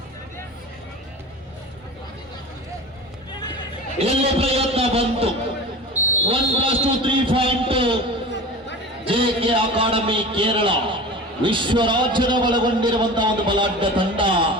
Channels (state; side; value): normal; both; correlation 0.34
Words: ಇಲ್ಲಿ ಪ್ರಯತ್ನ ಬಂತು. 1+2 3 ಪಾಯಿಂಟ್ ಜೆಕೆ ಅಕಾಡೆಮಿ ಕೇರಳ ವಿಶ್ವ ರಾಜ್ಯದ ಒಳಗೊಂಡಿರುವಂತಹ ಒಂದು ಬಲಾಢ್ಯ ತಂಡ